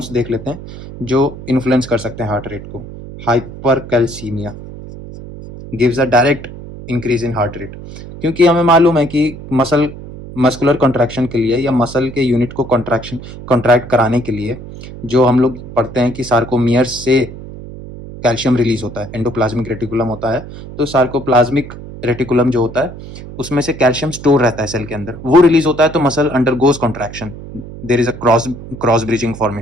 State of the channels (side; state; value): right; noise; hum, 13 dB below the sound